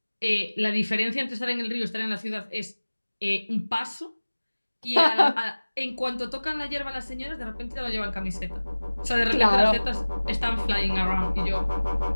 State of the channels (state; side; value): inverted; both; correlation -1.00